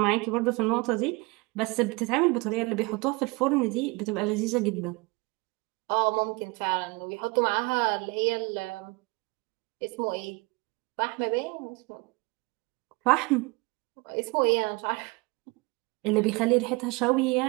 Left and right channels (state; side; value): quieter; left; 25.7 dB